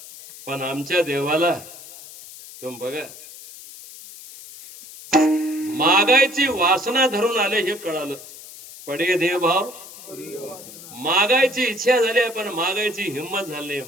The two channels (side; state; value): left; noise; hiss, 16 dB below the sound